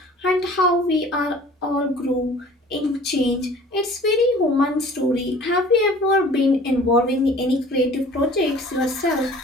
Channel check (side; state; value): both; normal; correlation 0.48